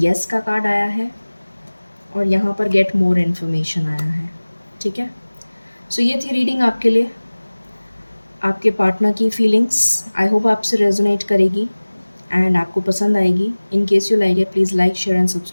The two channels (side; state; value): both; inverted; correlation -1.00